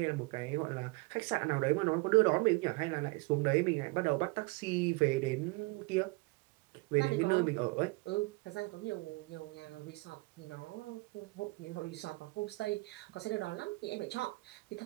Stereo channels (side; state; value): left; quieter; 25.1 dB